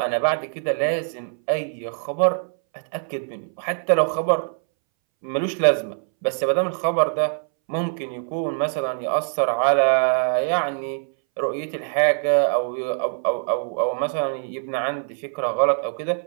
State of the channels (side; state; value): left; silent; 63 dB below the other